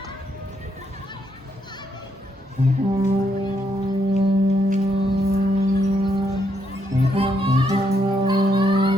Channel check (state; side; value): normal; both; correlation 0.76